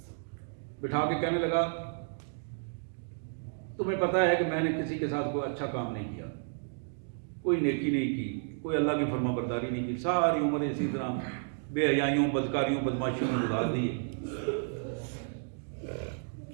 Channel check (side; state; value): left; silent; digital silence